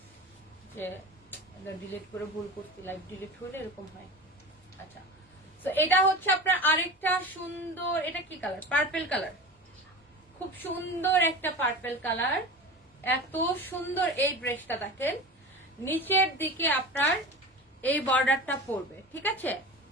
যে ডিলিট করে ভুল করছি, লাইভ ডিলিট হলে এরকম হয়। আচ্ছা, তো এটা হচ্ছে আপনার আরেকটা সুন্দর, এটা কি কালার? পার্পল কালার, খুব সুন্দর একটা পার্পল কালার। এত সুন্দর এই ড্রেসটা দেখেন, নিচের দিকে আপনার এই বর্ডারটা পড়বে, ঠিক আছে।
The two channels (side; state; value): both; normal; correlation 0.31